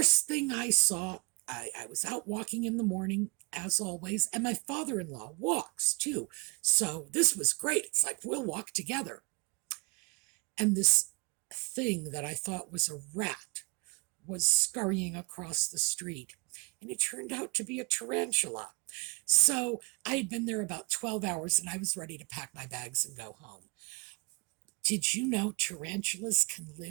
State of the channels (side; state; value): left; quieter; 31.4 dB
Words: thing I saw, I was out walking in the morning, as always, and my father-in-law walks too. So this was great. It's like, we'll walk together. And this thing that I thought was a rat was scurrying across the street, and it turned out to be a tarantula. So I had been there about 12 hours, and I was ready to pack my bags and go home. Did you know tarantulas can